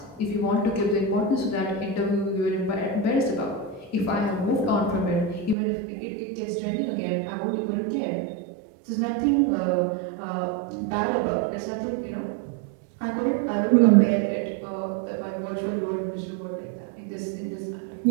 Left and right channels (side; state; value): left; drops out; at 5.6 s